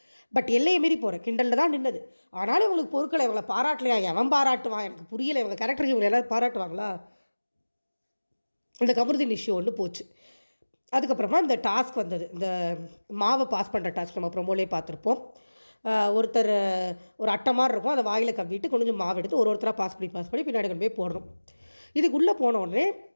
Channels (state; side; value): inverted; both; correlation -1.00